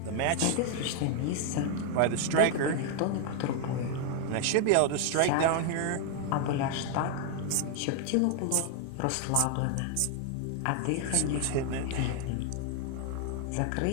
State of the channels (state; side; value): different; both; correlation 0.00